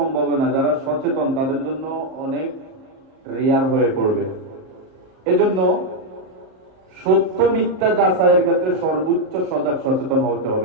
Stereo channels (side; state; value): left; late; 38 ms